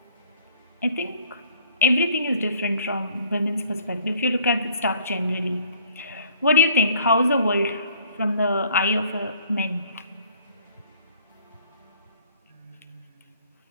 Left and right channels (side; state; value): both; inverted; correlation -0.57